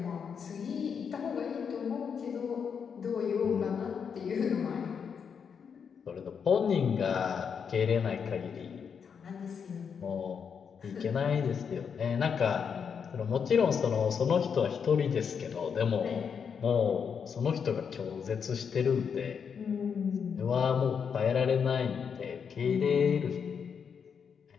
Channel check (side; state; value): right; quieter; 6.7 dB